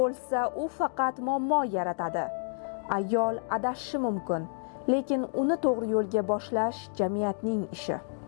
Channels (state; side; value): silent; right; digital silence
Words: u faqat muammo yaratadi. Ayol adashishi mumkin, lekin uni to'g'ri yo'lga boshlash jamiyatning ishi.